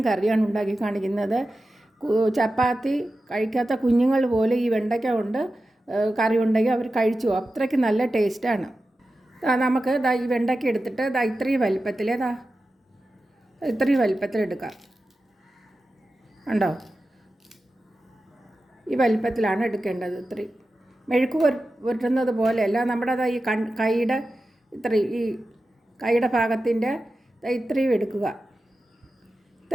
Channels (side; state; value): both; normal; correlation 0.93